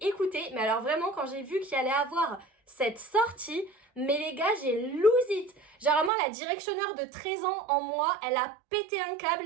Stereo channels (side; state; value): left; drops out; at 6.1 s